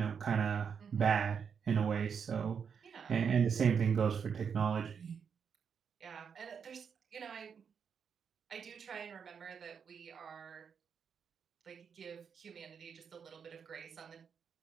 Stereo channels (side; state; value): left; quieter; 6.8 dB